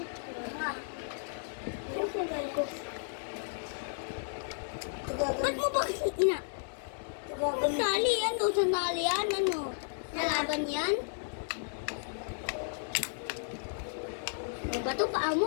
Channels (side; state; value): right; silent; 55 dB below the other